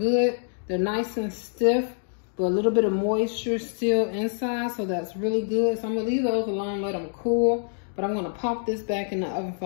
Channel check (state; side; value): silent; right; digital silence